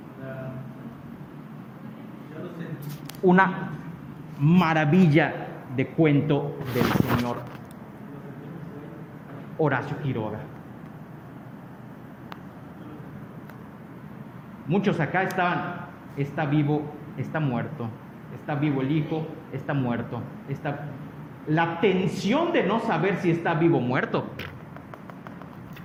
Una maravilla de cuento del señor Horacio Quiroga. Muchos acá está vivo, está muerto, está vivo el hijo, está muerto, la tensión de no saber si está vivo o muerto.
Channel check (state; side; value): identical; both; correlation 1.00